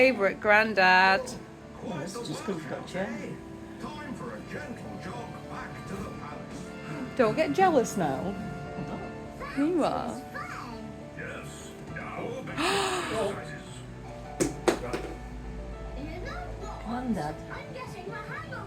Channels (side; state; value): both; identical; correlation 1.00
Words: granddad. Oh, that's just because you've got a chair. Don't get jealous now. You are. Granddad.